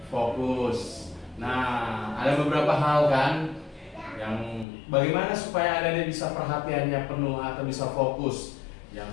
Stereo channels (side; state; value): right; drops out; at 4.7 s